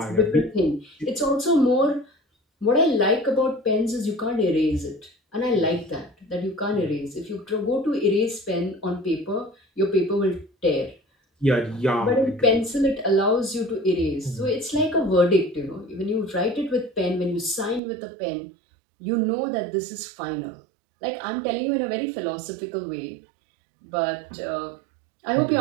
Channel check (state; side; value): drops out; left; at 17.8 s